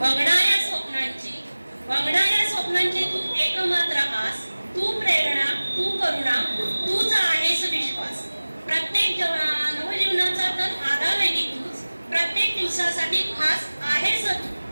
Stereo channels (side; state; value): both; inverted; correlation -1.00